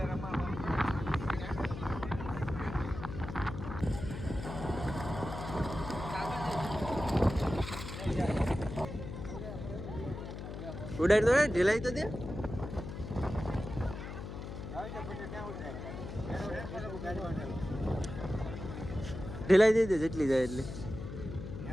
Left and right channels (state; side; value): noise; left; hum, 8 dB below the sound